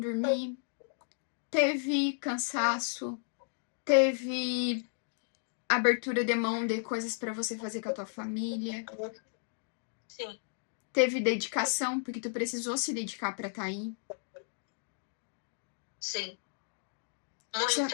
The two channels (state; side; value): silent; right; digital silence